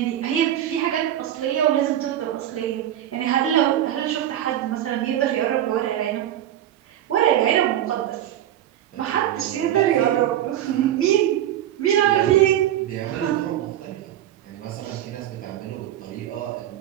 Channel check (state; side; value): quieter; left; 11.9 dB